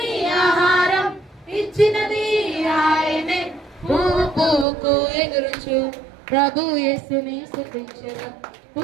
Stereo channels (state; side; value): drops out; left; at 4.7 s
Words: ఆహారం ఇచ్చినది ఆయనే. పువ్వు పువ్వుకు ఎగురుచు ప్రభు యేసుని స్తుతించెదం.